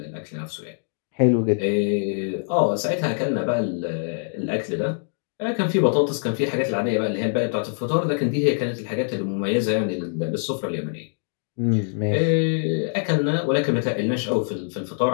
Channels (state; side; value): silent; right; digital silence